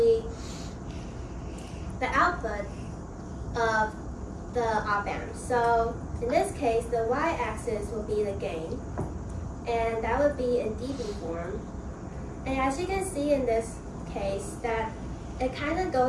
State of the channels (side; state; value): both; identical; correlation 1.00